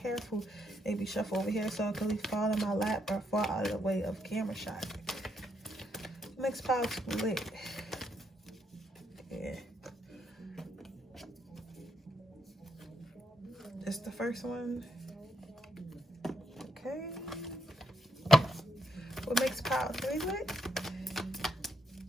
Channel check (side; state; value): both; normal; correlation 0.77